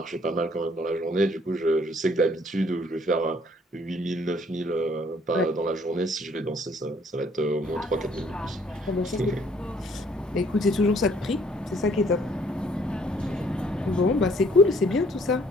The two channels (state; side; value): normal; both; correlation 0.62